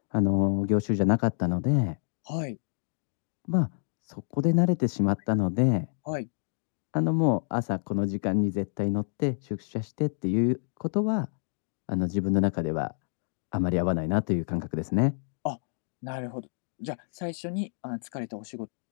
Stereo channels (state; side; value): silent; right; digital silence